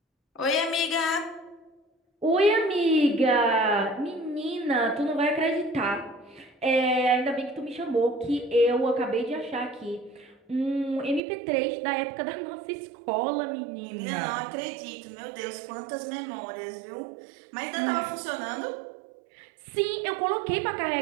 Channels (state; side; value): drops out; left; at 11.2 s